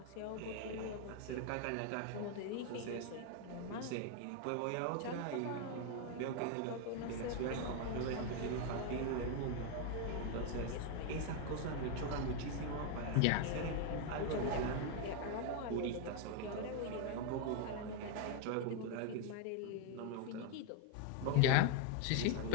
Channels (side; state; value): both; different; correlation 0.01